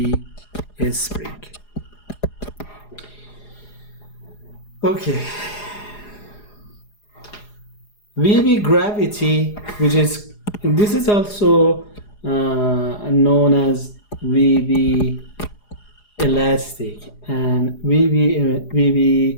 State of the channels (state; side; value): late; right; 4.8 ms